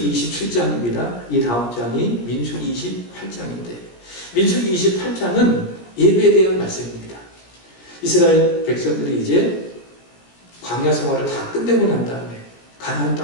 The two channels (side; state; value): right; late; 17 ms